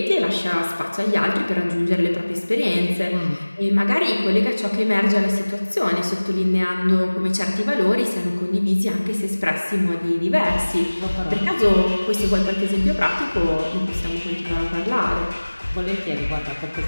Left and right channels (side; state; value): both; inverted; correlation -1.00